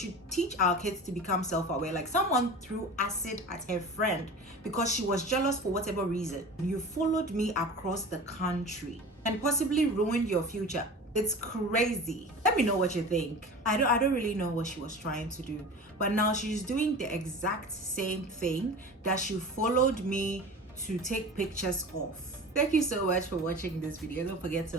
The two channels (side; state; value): both; normal; correlation 0.35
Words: teach our kids to become self-aware. Like, someone threw acid at her friend because she was jealous for whatever reason. You followed me across the country and possibly ruined your future. It's crazy. Let me know what you think. I don't really know what she was trying to do, but now she's doing the exact same thing that she followed me to take pictures of. Thank you so much for watching this video. Don't forget